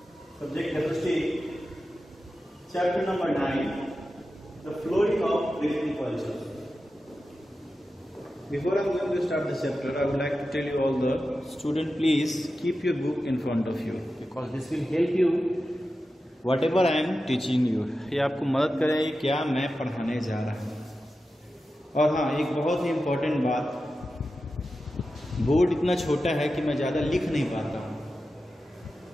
subject chemistry, chapter number 9, the flowing of breathing poisons. Before I am going to start this chapter, I would like to tell you all the student, please keep your book in front of you because this will help you whatever I am teaching you. ये आपको मदद करेगी क्या मैं पढ़ाने जा रहा हूँ. और हाँ, एक बहुत ही इम्पोर्टेंट बात, बोर्ड इतना छोटा है कि मैं ज़्यादा लिख नहीं पाता हूँ,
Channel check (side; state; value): both; normal; correlation 0.92